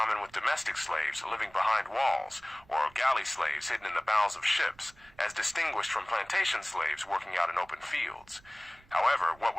with domestic slaves living behind walls, or galley slaves hidden in the bowels of ships, as distinguished from plantation slaves working out in open fields. However, what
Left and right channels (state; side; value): noise; right; rumble, 27 dB below the sound